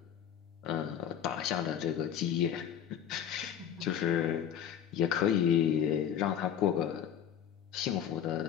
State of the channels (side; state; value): right; quieter; 9.2 dB